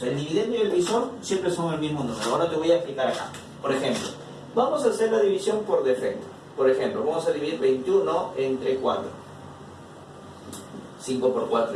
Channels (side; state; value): both; identical; correlation 1.00